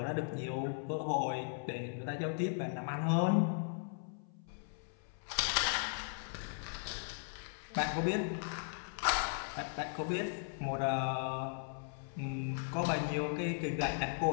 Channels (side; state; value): right; silent; 53 dB below the other